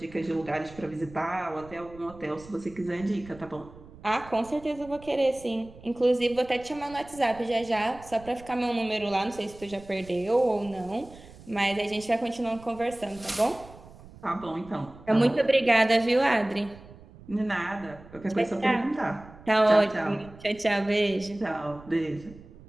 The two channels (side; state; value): right; noise; rumble, 20 dB below the sound